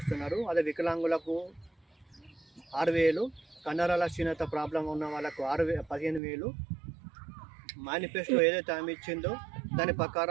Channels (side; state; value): left; drops out; at 6.2 s